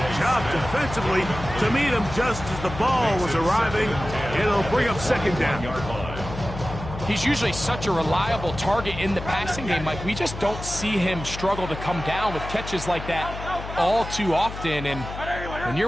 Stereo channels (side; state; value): left; noise; hum, 9 dB below the sound